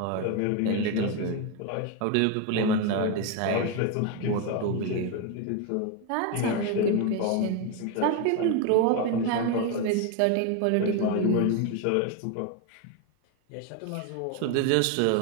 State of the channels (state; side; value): different; both; correlation 0.02